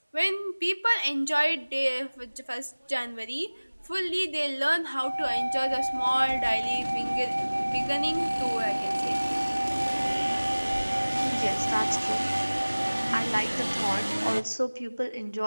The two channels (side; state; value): both; inverted; correlation -1.00